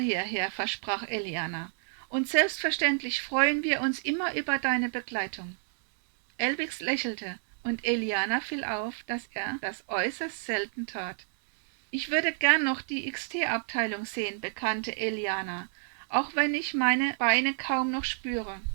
versprach Eliana. Und selbstverständlich freuen wir uns immer über deine Begleitung. Elbix lächelte, und Eliana fiel auf, dass er das äußerst selten tat. Ich würde gern noch die XT-Abteilung sehen, bekannte Eliana, auch wenn ich meine Beine kaum noch spüre.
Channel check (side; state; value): left; silent; 58 dB below the other